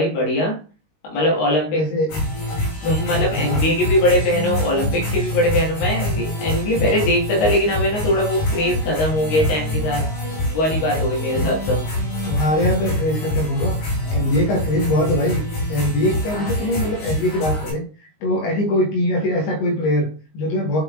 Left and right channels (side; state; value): right; late; 19 ms